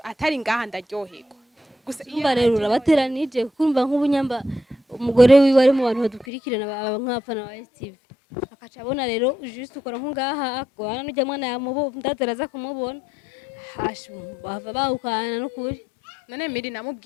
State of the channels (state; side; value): drops out; right; at 6.2 s